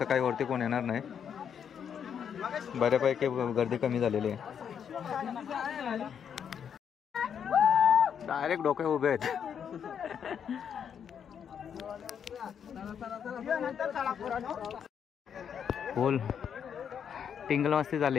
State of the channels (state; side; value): quieter; right; 7.9 dB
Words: काही वरती कोण येणार नाही. बऱ्यापैकी गर्दी कमी झालेली आहे. डायरेक्ट डोके उभे आहेत. फुल टिंगल मस्ती